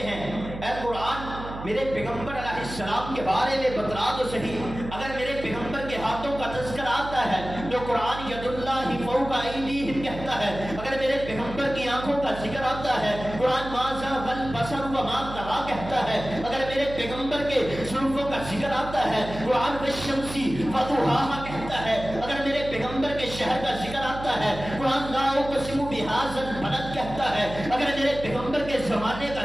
ہیں، اے قرآن میرے پیغمبر علیہ السلام کے بارے میں بتلا تو صحیح، اگر میرے پیغمبر کے ہاتھوں کا تذکر آتا ہے تو قرآن ید اللہ فوق ایدیہم کہتا ہے، اگر میرے پیغمبر کی آنکھوں کا ذکر آتا ہے قرآن ما زاغ البصر وما طغى کہتا ہے، اگر میرے پیغمبر کے زلفوں کا ذکر آتا ہے قرآن والشمس وضحاها کہتا ہے، اگر میرے پیغمبر کے شہر کا ذکر آتا ہے قرآن لا اقسم بهذا البلد کہتا ہے، اگر میرے پیغمبر کے زمانے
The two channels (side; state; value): right; noise; hum, 10 dB below the sound